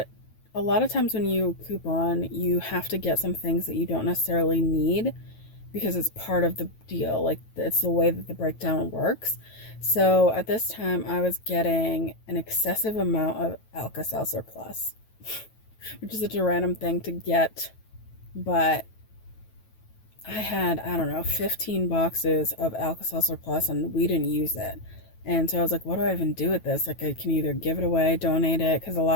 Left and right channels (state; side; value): late; right; 9.2 ms